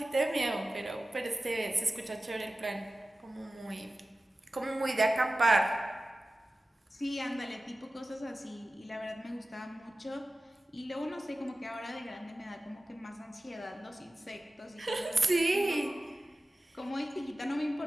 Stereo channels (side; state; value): both; normal; correlation 0.96